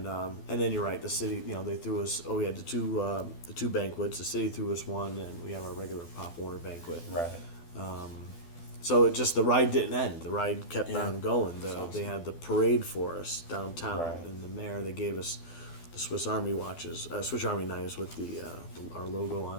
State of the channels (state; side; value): late; right; 12 ms